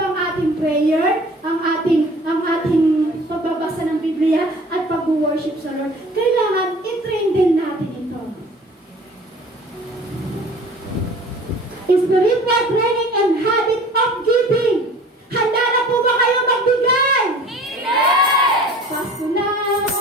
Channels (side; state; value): both; normal; correlation 0.46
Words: ang ating prayer, ang ating pagbabasa ng Biblia at pag-worship sa Lord. Kailangan i-train din natin ito. Spiritual training and habit of giving. Handa na po ba kayo magbigay? Amen. Pasko na!